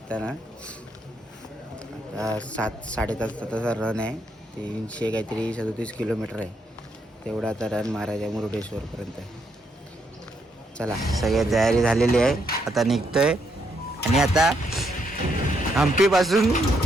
आता 7-7.5 तासाचा रन आहे. 300 काहीतरी 37 किलोमीटर आहे. तेवढा आता रन मारायचा मुरुडेश्वरपर्यंत. चला सगळी तयारी झालेली आहे. आता निघतोय आणि आता हम्पीपासून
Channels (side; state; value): both; normal; correlation 0.76